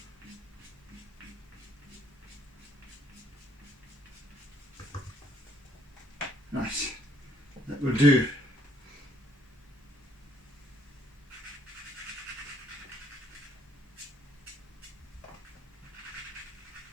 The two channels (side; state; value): both; normal; correlation 0.67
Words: Right, that will do.